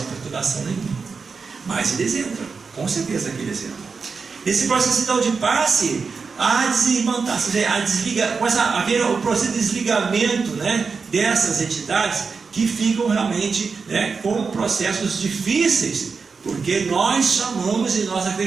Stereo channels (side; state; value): left; quieter; 5.0 dB